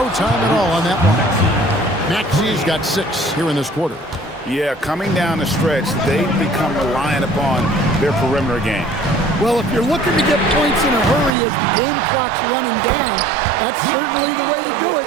time at all on that one. Maxey's got 6 here in this quarter. Yeah, coming down the stretch, they've become reliant upon their perimeter game. Well, if you're looking to get points in a hurry as the game clock's running down, that's certainly the way to do it.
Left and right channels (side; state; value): left; drops out; at 11.3 s